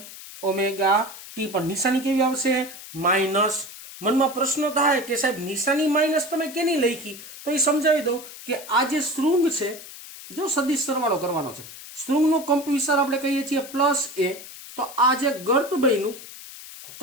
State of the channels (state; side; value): noise; left; hiss, 15 dB below the sound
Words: ઓમેગા t. પણ નિશાની કેવી આવશે? માઇનસ. મનમાં પ્રશ્ન થાય કે સાહેબ નિશાની માઇનસ તમે કેની લખી? તો એ સમજાવી દઉં કે આ જે શૃંગ છે, જો સદિશ સરવાળો કરવાનો છે, શૃંગનો કંપ વિસ્તાર આપણે કહીએ છીએ પ્લસ a. તો આ જે ગર્ત બન્યું